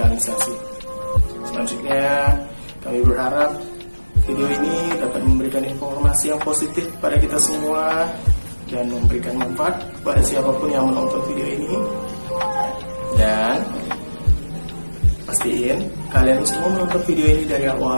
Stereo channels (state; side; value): inverted; both; correlation -1.00